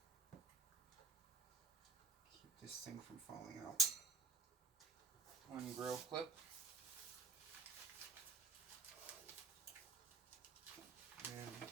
Keep this thing from falling out. One grill clip. And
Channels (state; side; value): quieter; left; 5.1 dB